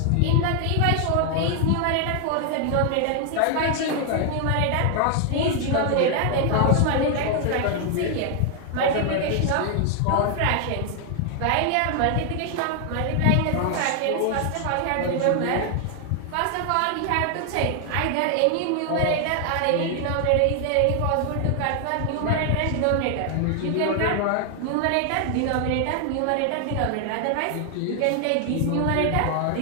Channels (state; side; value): different; both; correlation 0.00